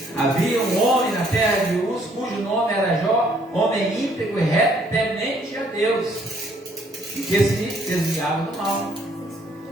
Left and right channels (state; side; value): normal; both; correlation 0.65